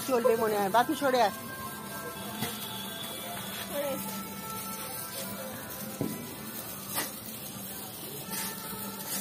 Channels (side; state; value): both; identical; correlation 1.00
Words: চলবে মনে হয়। বাপি সরে আস।